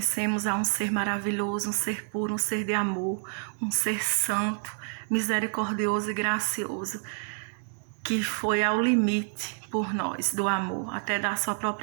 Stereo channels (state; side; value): silent; left; 59 dB below the other